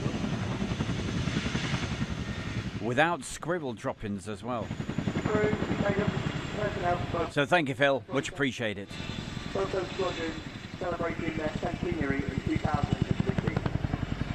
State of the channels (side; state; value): both; identical; correlation 1.00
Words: Without scribble droppings as well. So thank you, Phil. Much appreciated. Photo Squadron celebrating their centenary in 2015.